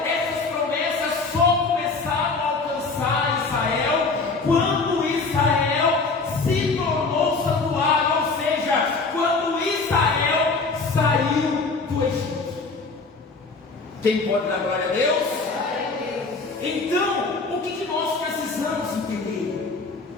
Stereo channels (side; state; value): right; quieter; 4.0 dB